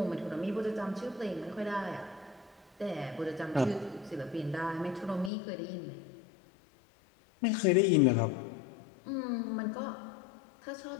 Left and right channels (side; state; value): right; drops out; at 5.3 s